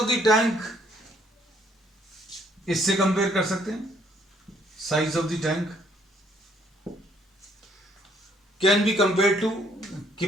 द टैंक इससे कंपेयर कर सकते हैं। Size of the tank can be compare to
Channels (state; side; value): normal; both; correlation 0.66